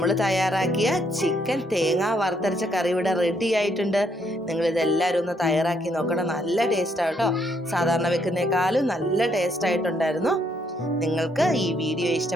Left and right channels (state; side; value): normal; both; correlation 0.72